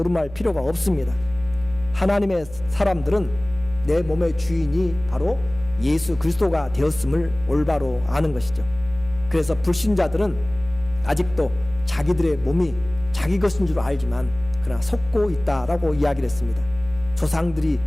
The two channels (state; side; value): noise; right; hum, 18 dB below the sound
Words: 필요가 없습니다. 하나님의 사람들은 내 몸의 주인이 바로 예수 그리스도가 되었음을 올바로 아는 것이죠. 그래서 불신자들은 아직도 자기들의 몸이 자기 것인 줄 알지만 그러나 속고 있다라고 이야기를 했습니다. 조상들이